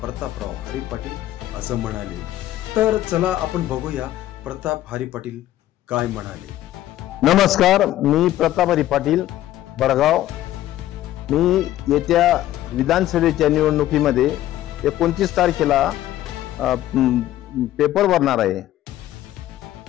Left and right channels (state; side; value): quieter; right; 13.8 dB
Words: प्रतापराव हरी पाटील असं म्हणाले। तर चला आपण बघूया प्रताप हरी पाटील काय म्हणाले। नमस्कार, मी प्रताप हरी पाटील भडगाव। मी येत्या विधानसभेच्या निवडणुकीमध्ये 29 तारखेला पेपर भरणार आहे